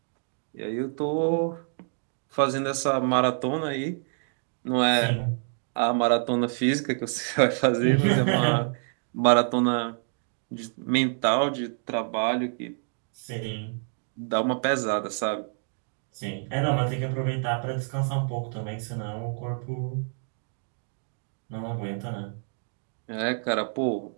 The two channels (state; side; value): silent; left; 60 dB below the other